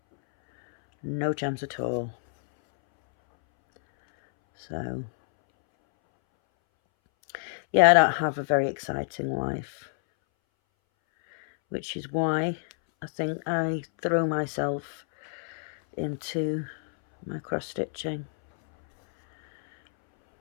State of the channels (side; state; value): right; silent; 60 dB below the other